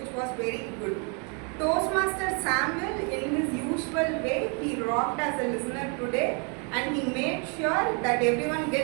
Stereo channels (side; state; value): left; quieter; 36.0 dB